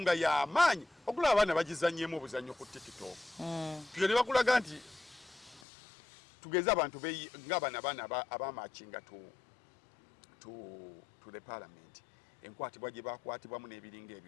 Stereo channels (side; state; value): right; drops out; at 5.6 s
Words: nga y'amaanyi okulaba abaana bagizannyemu obuzannyo ku TikTok. Tugende bakulaga nti tugeza abantu ng'abana abamachinga to the parliament enkwatibwa gye bakwatibwamu n'ebiringa